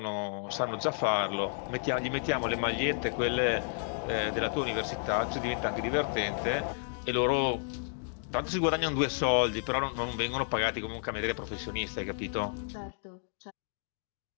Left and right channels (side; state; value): right; silent; digital silence